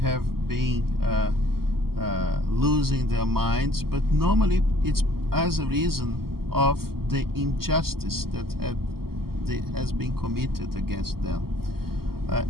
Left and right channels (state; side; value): late; left; 0.94 ms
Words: been losing their minds, but normally it's as a reason of the injustice that has been committed against them.